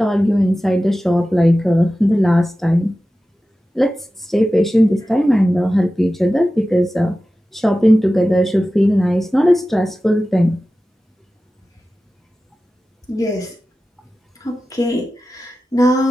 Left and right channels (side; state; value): both; normal; correlation 0.95